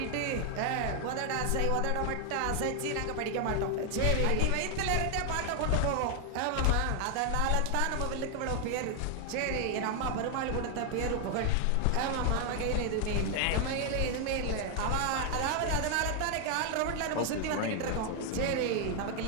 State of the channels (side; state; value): both; different; correlation 0.00